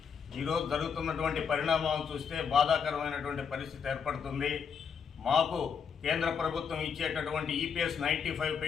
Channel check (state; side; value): quieter; right; 6.7 dB